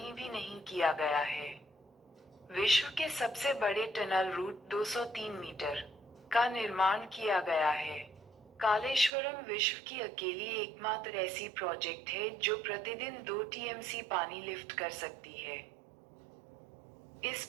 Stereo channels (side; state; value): left; drops out; at 9.1 s